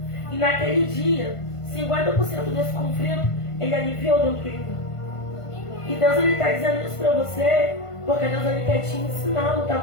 E naquele dia, 50% desse conflito, ele aliviou dentro de mim. E Deus ele está dizendo isso para você, porque Deus ele quer te ensinar a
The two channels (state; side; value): late; right; 1.5 ms